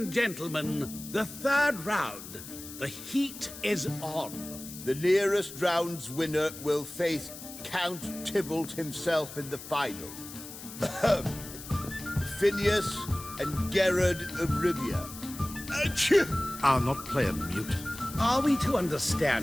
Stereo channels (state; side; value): noise; left; hiss, 13 dB below the sound